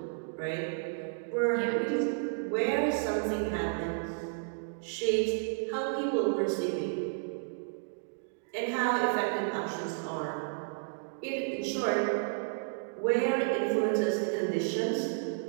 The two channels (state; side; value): silent; left; digital silence